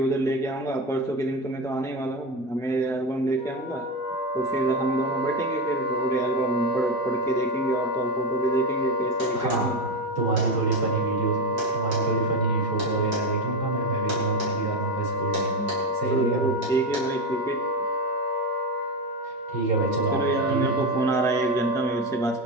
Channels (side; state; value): both; normal; correlation 0.16